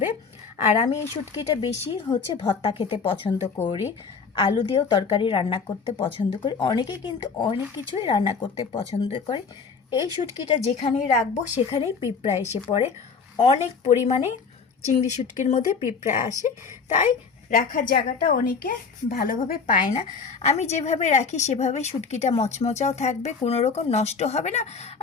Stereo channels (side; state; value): right; quieter; 5.3 dB